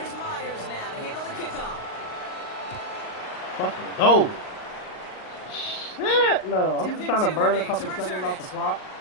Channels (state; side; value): late; right; 38 ms